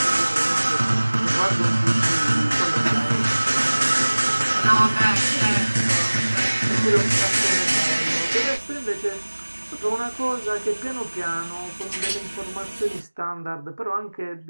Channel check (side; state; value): both; inverted; correlation -1.00